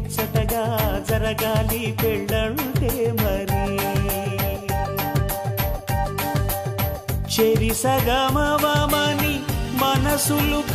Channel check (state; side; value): identical; both; correlation 1.00